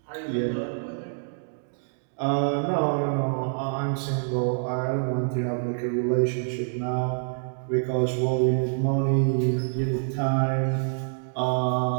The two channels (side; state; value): left; silent; digital silence